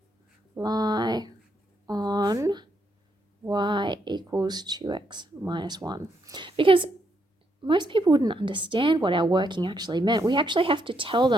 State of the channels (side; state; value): both; normal; correlation 0.77